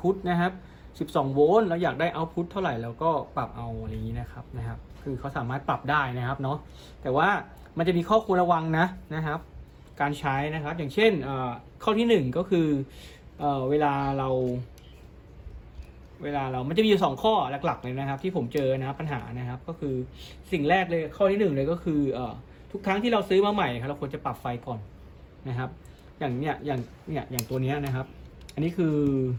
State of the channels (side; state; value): both; identical; correlation 1.00